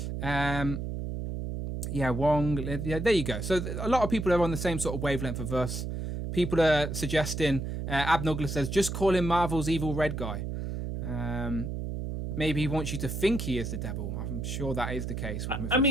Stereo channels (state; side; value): noise; right; hum, 4 dB below the sound